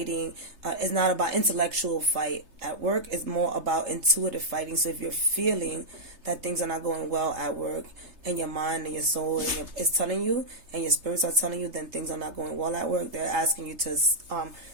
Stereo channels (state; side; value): late; left; 3.3 ms